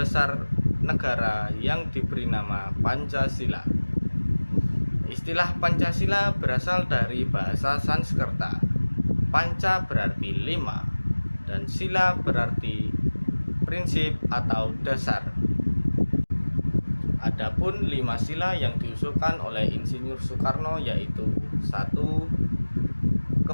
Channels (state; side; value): inverted; both; correlation -1.00